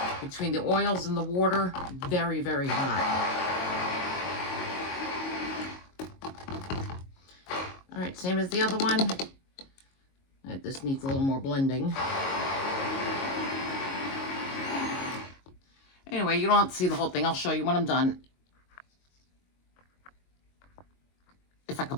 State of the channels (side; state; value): right; late; 22 ms